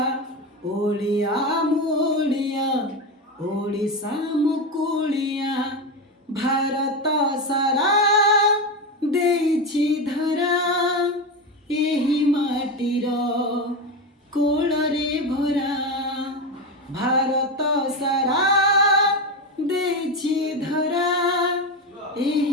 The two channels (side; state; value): both; normal; correlation 0.16